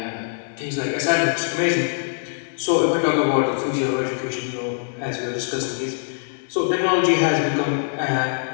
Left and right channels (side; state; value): right; silent; digital silence